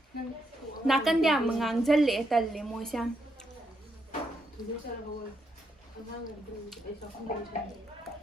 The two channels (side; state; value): both; normal; correlation 0.79